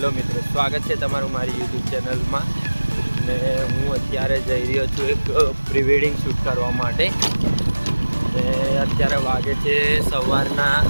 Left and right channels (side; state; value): both; inverted; correlation -1.00